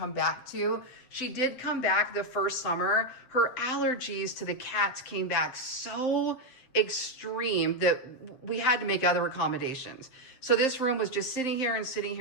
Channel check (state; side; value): late; right; 7.7 ms